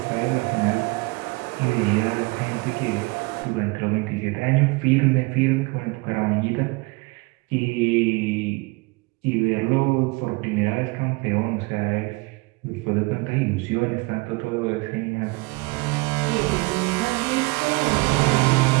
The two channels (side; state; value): left; quieter; 25.7 dB